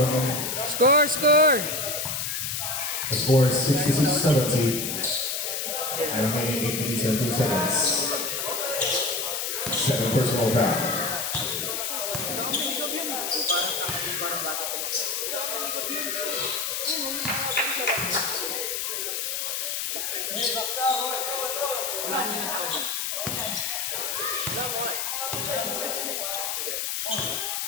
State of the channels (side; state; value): left; noise; hiss, 1 dB below the sound